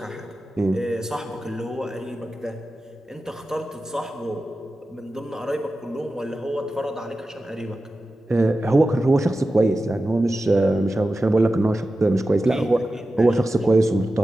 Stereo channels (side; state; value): both; normal; correlation 0.93